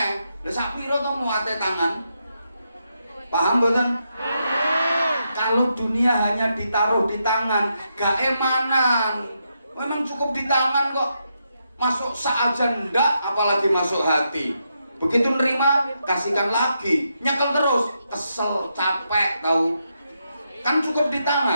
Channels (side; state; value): both; inverted; correlation -0.82